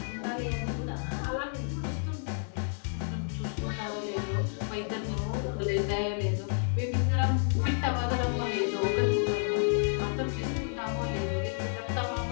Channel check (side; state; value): right; silent; digital silence